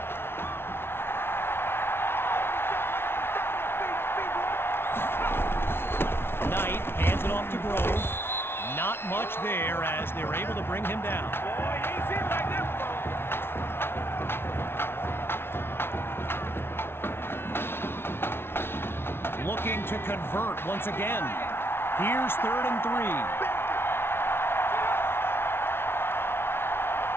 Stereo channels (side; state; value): right; late; 0.12 ms